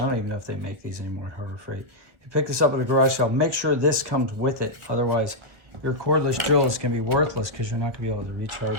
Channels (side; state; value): left; late; 1.7 ms